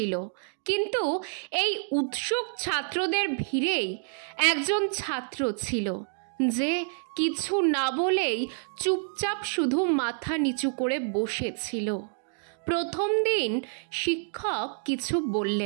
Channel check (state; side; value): silent; left; 59 dB below the other